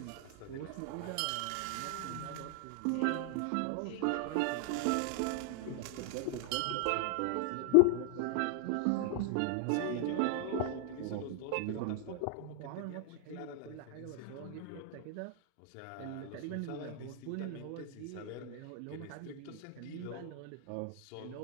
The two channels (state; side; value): different; both; correlation 0.00